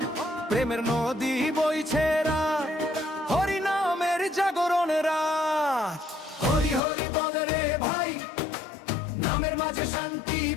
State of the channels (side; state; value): right; drops out; at 6.8 s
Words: প্রেমের নদী বইছে রাত, হরি নামের জাগরণ রাত। হরি হরি বলে রে ভাই, নামের মাঝে শান্তি